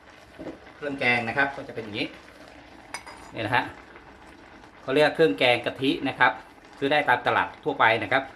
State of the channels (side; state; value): both; identical; correlation 1.00